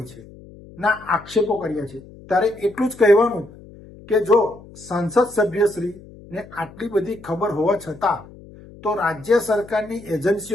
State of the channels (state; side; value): noise; left; hum, 20 dB below the sound